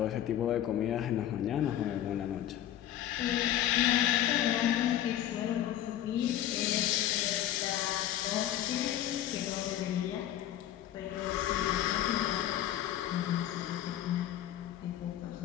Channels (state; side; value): quieter; right; 11.9 dB